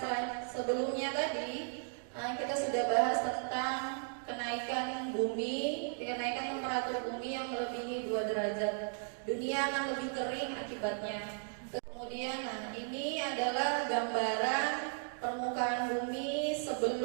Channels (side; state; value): left; silent; 54 dB below the other